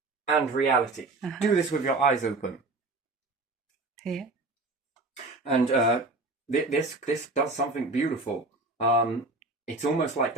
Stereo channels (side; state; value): left; quieter; 3.2 dB